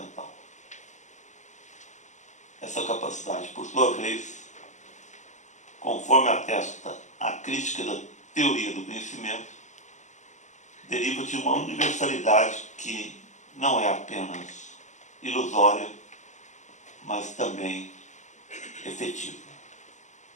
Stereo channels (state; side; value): late; right; 0.34 ms